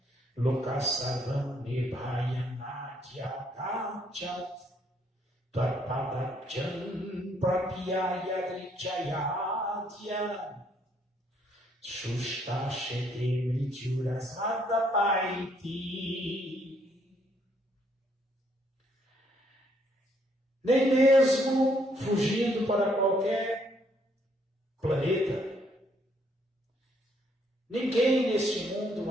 Lokasavam Nibhaya Natya Dachat Tvarpadachan Prapyaya Drichayadya Shushta Shete Mrityurasada Paiti. nem mesmo fugindo para qualquer planeta. Ninguém neste mundo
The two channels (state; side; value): normal; both; correlation 0.69